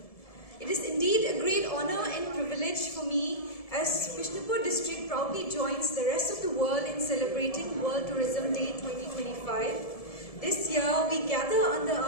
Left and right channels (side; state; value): right; late; 1.7 ms